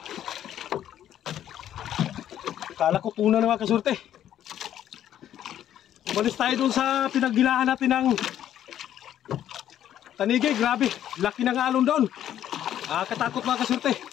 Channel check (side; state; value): right; quieter; 11.0 dB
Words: Akala ko tuna na mga kasulti. Umalis tayo dun sa pinagbilahan natin ng tanigi. Grabe, laki ng alon doon. Katakot mga kasulti.